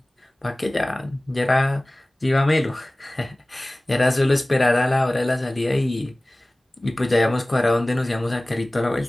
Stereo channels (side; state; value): both; normal; correlation 0.98